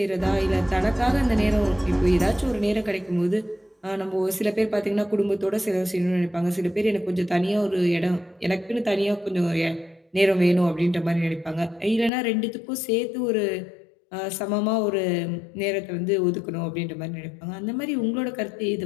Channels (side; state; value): right; drops out; at 12.1 s